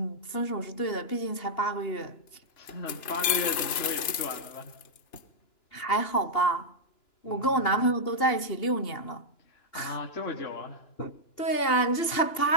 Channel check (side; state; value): right; late; 2.9 ms